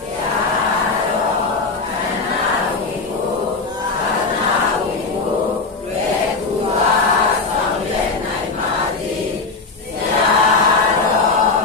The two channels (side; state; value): right; quieter; 4.0 dB